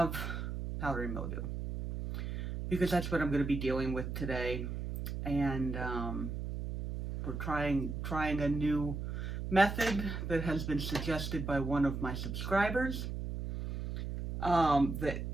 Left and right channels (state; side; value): noise; right; hum, 4 dB below the sound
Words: powdery mildew, because that's what I'm going to be dealing with today. And we're trying a new method that has been suggested by one of my subscribers that